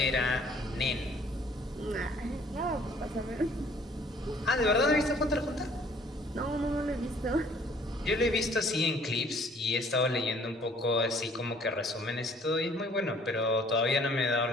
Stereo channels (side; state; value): both; normal; correlation 0.57